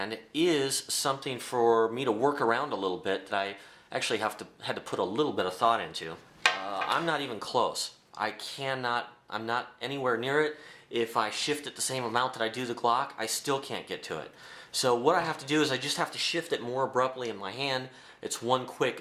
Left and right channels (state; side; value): identical; both; correlation 1.00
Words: is something for me to work around a little bit that I actually had to put a little bit of thought into. I'm not even close. I'm not anywhere near it. If I shift it the same amount that I do the Glock, I still can't get to it. So what I have to do is I just have to shift it more abruptly in my hand. It's one